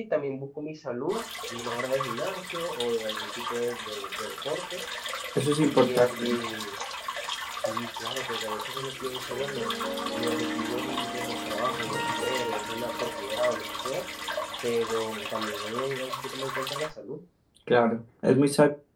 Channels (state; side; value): identical; both; correlation 1.00